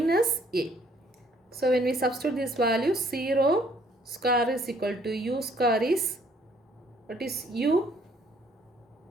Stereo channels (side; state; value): both; normal; correlation 0.63